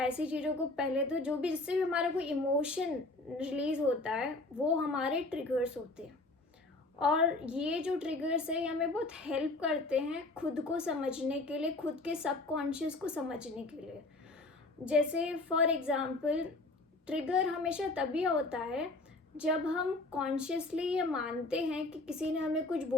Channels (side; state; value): right; quieter; 3.0 dB